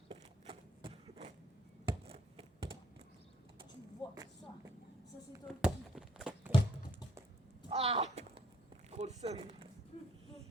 Tu vois ça. Ça, c'est ton petit. Ah. Trop de seum.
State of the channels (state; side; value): normal; both; correlation 0.66